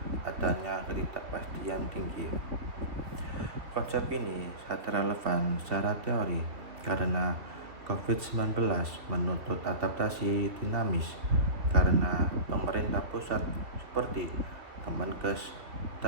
adanya ketidakpastian tinggi. Konsep ini sangat relevan secara teori karena COVID-19 menuntut adaptasi dinamis karena pemerintah pusat seperti Kemenkes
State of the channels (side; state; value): left; late; 2.5 ms